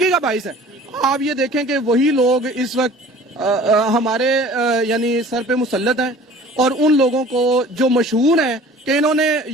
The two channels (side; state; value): both; normal; correlation 0.47